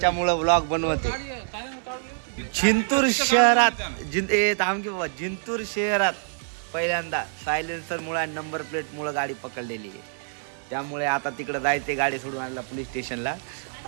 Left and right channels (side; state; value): left; silent; digital silence